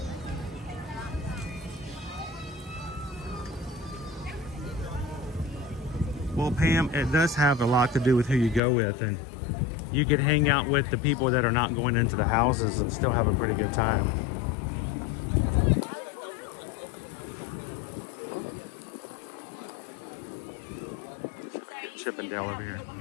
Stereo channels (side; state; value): right; drops out; at 8.6 s